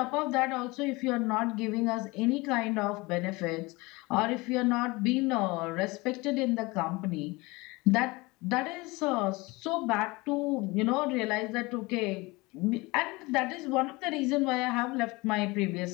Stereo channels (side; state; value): right; quieter; 23.6 dB